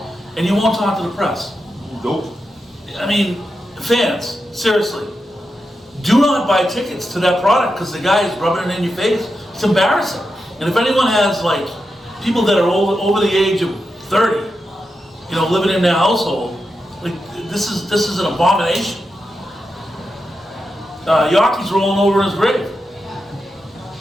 and you won't talk to the press. Nope. I mean, fans, seriously, do not buy tickets to that product because the guy is rubbing it in your face. It's embarrassing. And if anyone has like people that are over the age of 30, living in their household, like this is an abomination. Yorkie's rolling over in his grave.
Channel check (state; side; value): normal; both; correlation 0.88